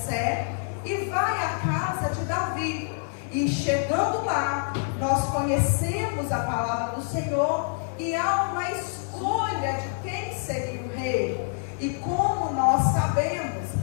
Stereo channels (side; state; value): right; silent; 61 dB below the other